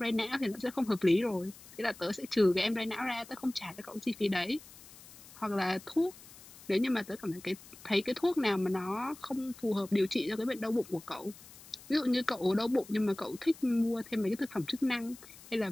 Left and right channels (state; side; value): noise; left; hiss, 19 dB below the sound